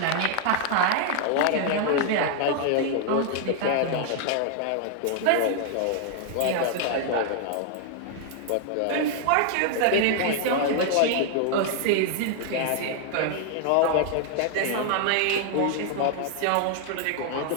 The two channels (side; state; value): both; different; correlation 0.00